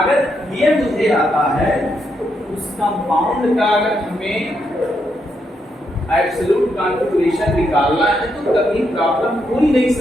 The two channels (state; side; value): normal; both; correlation 0.79